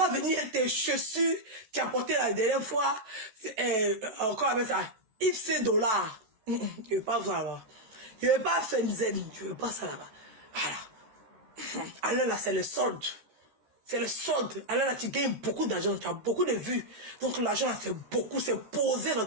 venir tes chaussures, tu as porté la dernière fois, encore avec ça, X dollars. Je veux pas ça là-bas. Je veux pas Fenzen, je veux pas ça là-bas. Voilà. Allez là, c'est le solde. C'est le solde. Alors là, tu gagnes beaucoup d'argent, tu as beaucoup de vues. Donc l'argent, c'est beaucoup, c'est posé dans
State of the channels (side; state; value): left; late; 14 ms